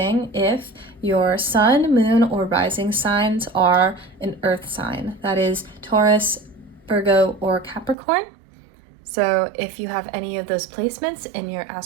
if your sun, moon, or rising signs are an earth sign. That is Taurus, Virgo, or Capricorn. So if you have any of those placements in your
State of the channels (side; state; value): left; drops out; at 8.0 s